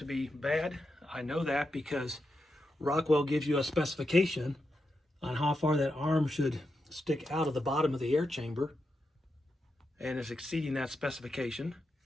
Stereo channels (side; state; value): both; normal; correlation 0.86